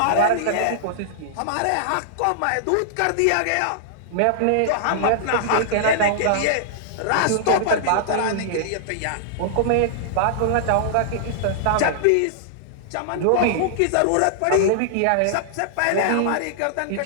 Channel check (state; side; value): different; both; correlation -0.01